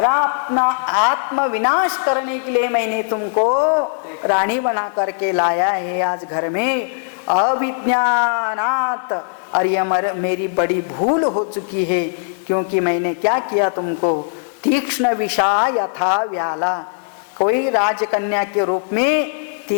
अपना आत्म विनाश करने के लिए मैंने तुमको रानी बना करके लाया है आज घर में। अविज्ञानात्, और यह मेरी बड़ी भूल हो चुकी है, क्योंकि मैंने क्या किया तुमको। तीक्ष्ण विषा यथा व्याला, कोई राजकन्या के रूप में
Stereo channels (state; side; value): silent; right; 67 dB below the other